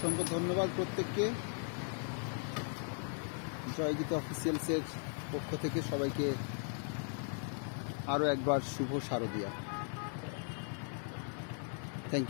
ধন্যবাদ প্রত্যেককে। জয়গীত অফিসিয়ালসের পক্ষ থেকে সবাইকে আরও একবার শুভ শারদীয়া। Thank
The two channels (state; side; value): silent; right; 53 dB below the other